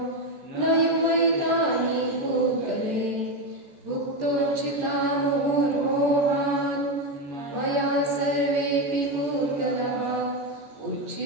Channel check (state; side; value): late; left; 13 ms